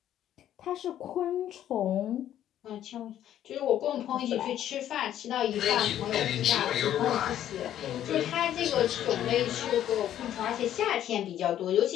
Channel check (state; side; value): quieter; right; 11.3 dB